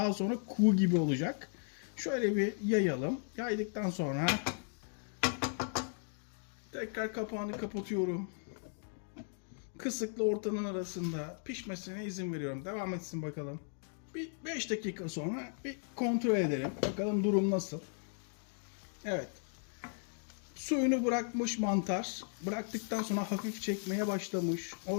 sonra kuğu gibi olacak. Şöyle bir yayalım. Yaydıktan sonra tekrar kapağını kapatıyorum. Kısıkla ortanın arasında pişmesine izin veriyorum. Devam etsin bakalım. Bir 5 dakika sonra bir kontrol edelim. Bakalım durum nasıl. Evet. Suyunu bırakmış mantar. Bıraktıktan sonra hafif çekmeye başlamış.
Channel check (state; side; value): silent; right; 54 dB below the other